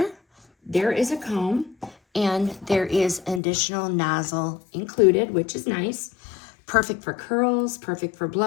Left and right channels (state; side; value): drops out; right; at 3.4 s